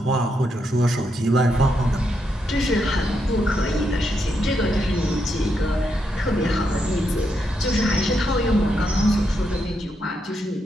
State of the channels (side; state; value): both; normal; correlation 0.81